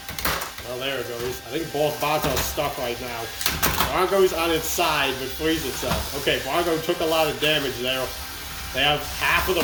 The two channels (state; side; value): identical; both; correlation 1.00